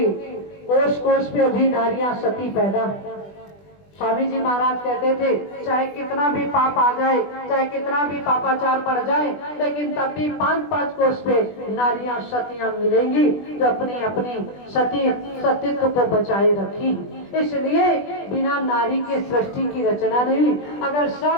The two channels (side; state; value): right; late; 20 ms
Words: कोष कोष पे अभी नारियां सती पैदा। स्वामी जी महाराज कहते थे चाहे कितना भी पाप आ जाए, चाहे कितना भी पापाचार बढ़ जाए, लेकिन तब भी 5-5 कोष पे नारियां सतियां मिलेंगी जो अपनी अपनी सतीत्व को बचाए रखी। इसलिए बिना नारी के सृष्टि की रचना नहीं हुई। अगर